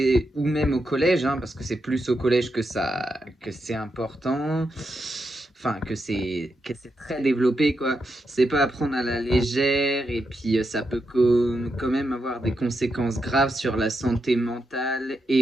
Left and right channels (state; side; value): normal; both; correlation 0.84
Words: ou même au collège, hein, parce que c'est plus au collège que c'est important, enfin, que c'est très développé, quoi. C'est pas à prendre à la légère, et puis ça peut quand même avoir des conséquences graves sur la santé mentale